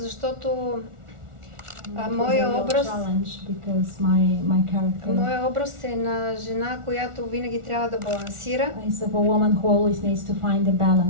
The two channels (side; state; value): left; late; 1.4 ms